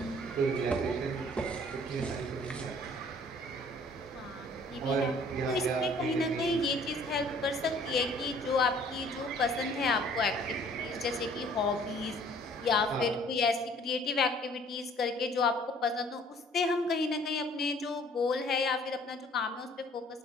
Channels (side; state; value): both; normal; correlation 0.55